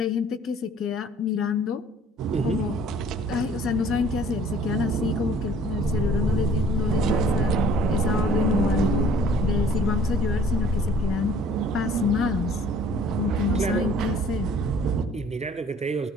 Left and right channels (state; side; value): normal; both; correlation 0.54